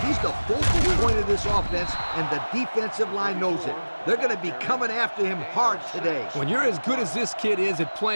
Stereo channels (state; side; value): inverted; both; correlation -1.00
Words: He's the focal point of this offense, and the defensive line knows it. They're going to be coming after him hard today. When you're as good as this kid is at